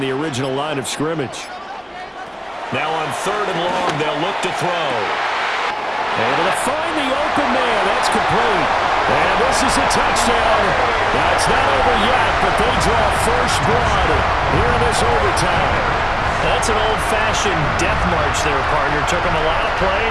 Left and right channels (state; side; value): identical; both; correlation 1.00